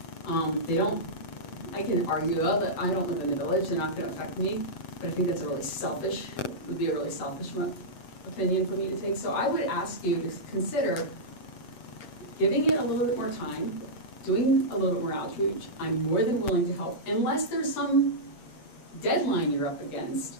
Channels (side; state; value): right; late; 7.8 ms